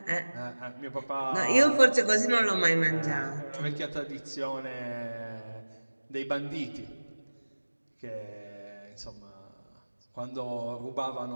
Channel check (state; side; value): inverted; both; correlation -1.00